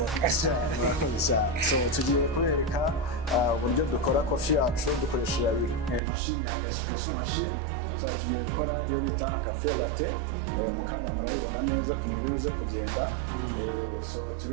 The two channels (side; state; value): left; drops out; at 6.0 s